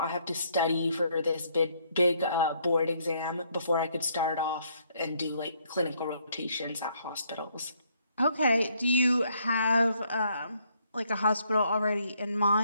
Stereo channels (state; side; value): inverted; both; correlation -0.69